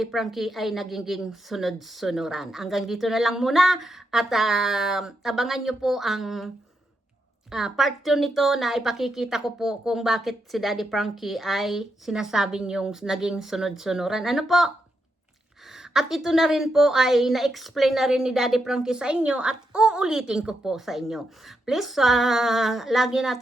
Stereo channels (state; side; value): normal; both; correlation 0.83